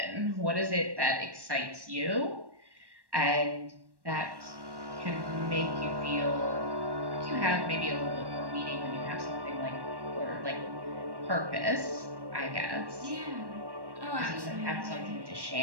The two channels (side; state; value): left; late; 1.1 ms